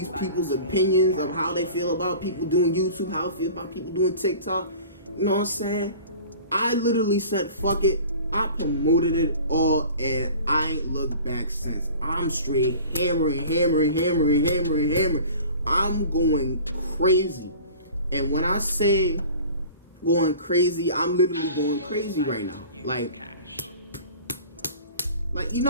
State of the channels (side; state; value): both; inverted; correlation -0.43